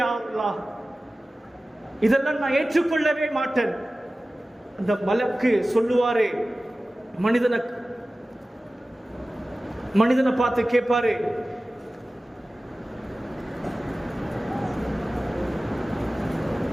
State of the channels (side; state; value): both; normal; correlation 0.96